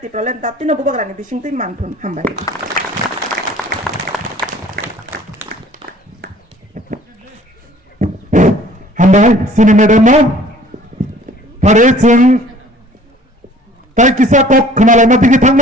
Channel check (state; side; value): normal; both; correlation 0.52